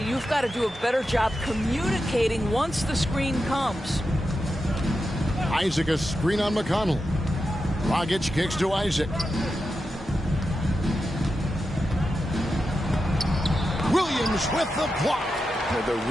you've got to do a better job communicating once the screen comes. Isaac a screen on McConnell. Dragic kicks to Isaac. Williams with the block. The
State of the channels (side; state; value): both; normal; correlation 0.89